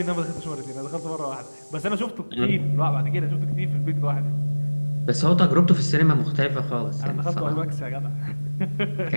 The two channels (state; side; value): inverted; both; correlation -1.00